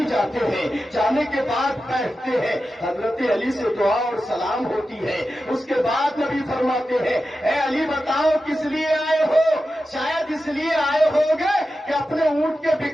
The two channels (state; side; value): normal; both; correlation 0.92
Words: جاتے ہیں، جانے کے بعد بیٹھتے ہیں، حضرت علی سے دعا اور سلام ہوتی ہے، اس کے بعد نبی فرماتے ہیں اے علی بتاؤ کس لیے آئے ہو؟ شاید اس لیے آئے ہوگے کہ اپنے اونٹ کے